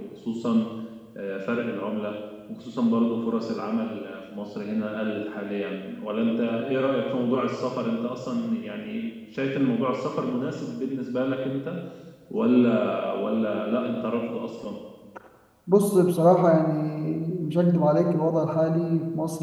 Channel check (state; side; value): identical; both; correlation 1.00